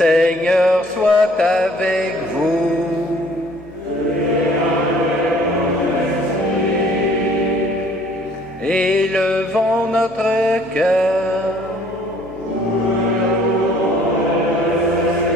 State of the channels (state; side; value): normal; both; correlation 0.57